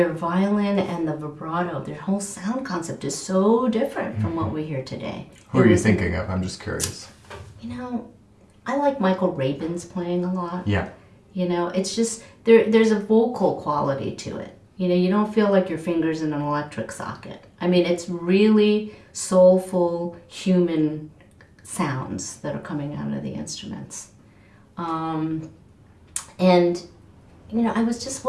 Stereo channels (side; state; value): both; identical; correlation 1.00